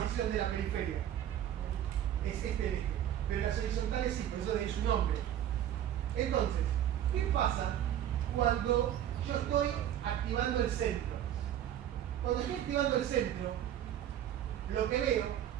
de la periferia. Es este eje. Pero las horizontales sí, por eso de ahí su nombre. Entonces, ¿qué pasa cuando yo estoy activando el centro? Cuando estoy activando el centro, lo que veo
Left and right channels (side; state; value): left; quieter; 11.0 dB